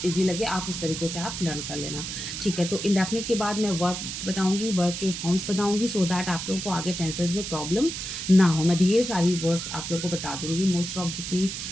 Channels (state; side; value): noise; right; hiss, 6 dB below the sound